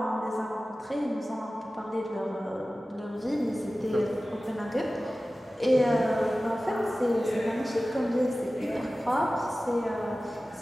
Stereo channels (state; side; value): normal; both; correlation 0.96